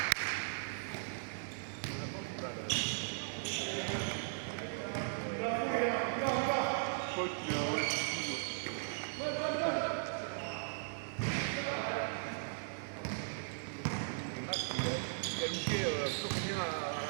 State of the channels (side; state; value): left; silent; digital silence